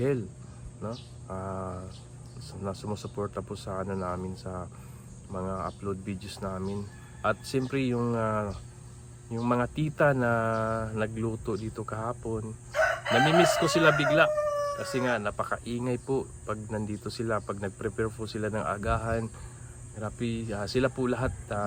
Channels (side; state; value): both; identical; correlation 1.00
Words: no? Na sumusuporta po sa namin sa mga upload videos namin. At siyempre yung mga tita na nagluto dito kahapon, namimiss ko sila bigla kasi nga napakaingay po pag nandito sila, pag nagprepare po sila ng agahan. Grabe, sila po lahat